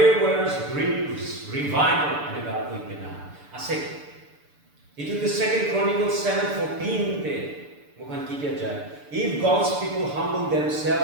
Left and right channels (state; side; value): late; left; 6.9 ms